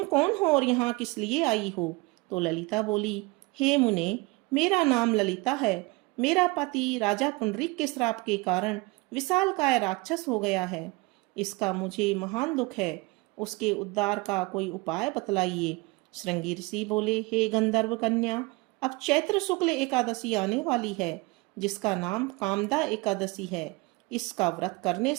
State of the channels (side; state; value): left; quieter; 24.4 dB